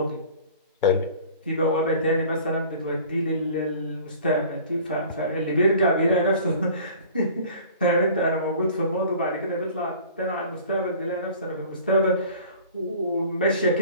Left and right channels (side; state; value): both; inverted; correlation -0.46